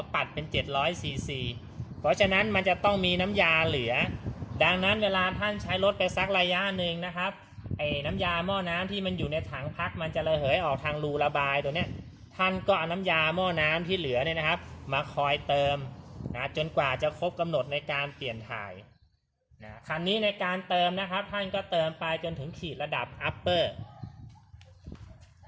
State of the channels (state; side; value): identical; both; correlation 1.00